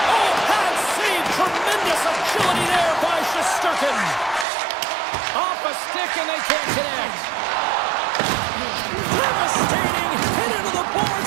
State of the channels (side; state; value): left; drops out; at 4.5 s